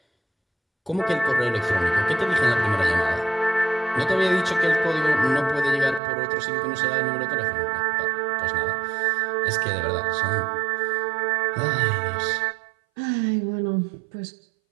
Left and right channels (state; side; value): drops out; left; at 6.0 s